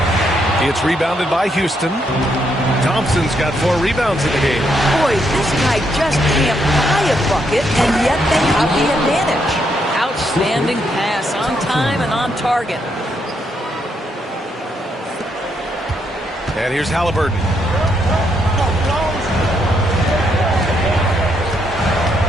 It's rebounded by Houston. Thompson's got 4 rebounds in the game. Boy, this guy just can't buy a bucket, and yet they have the advantage. Outstanding pass, on time and on target. And here's Halliburton.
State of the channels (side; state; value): both; normal; correlation 0.76